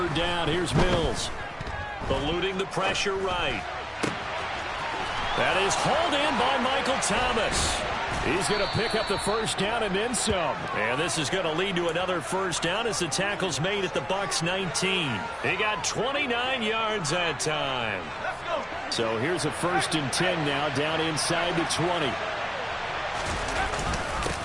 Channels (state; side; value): identical; both; correlation 1.00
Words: down, here's Mills. Eluding the pressure right. That is hauled in by Michael Thomas. He's going to pick up the 1st down and then some. And this is going to lead to another 1st down as the tackle's made at the Bucs 19. He got 29 yards that time. So here's a 1st and 10 now down inside the 20.